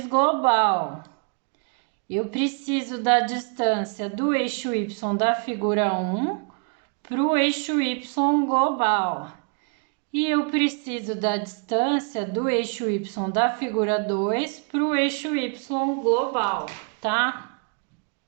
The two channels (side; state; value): left; quieter; 38.2 dB